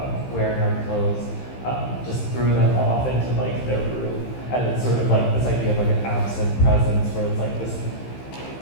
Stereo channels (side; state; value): right; late; 15 ms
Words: wearing our clothes just threw them off into like their room. And it's sort of like this idea of like an absent presence where it's like this